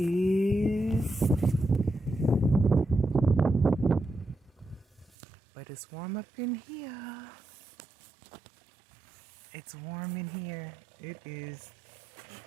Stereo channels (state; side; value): drops out; left; at 5.1 s